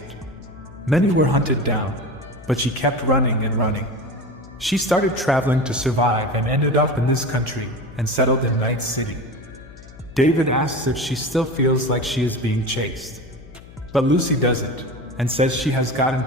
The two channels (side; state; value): left; noise; hum, 19 dB below the sound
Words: Many were hunted down, but she kept running and running. She started traveling to survive and ended up in this country and settled in Night City. David asks if she still feels like she is being chased. But Lucy doesn't, and says she has gotten